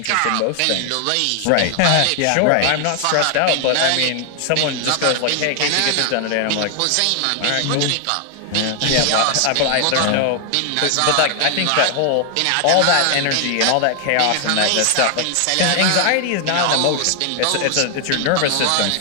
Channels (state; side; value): different; both; correlation 0.00